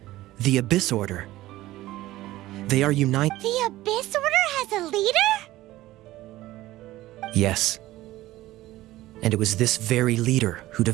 The Abyss Order. They are united. The Abyss Order has a leader? Yes. And it was this very leader who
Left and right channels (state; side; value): quieter; left; 16.5 dB